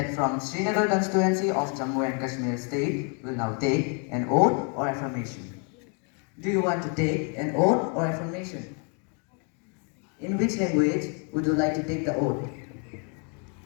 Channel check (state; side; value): quieter; right; 38.3 dB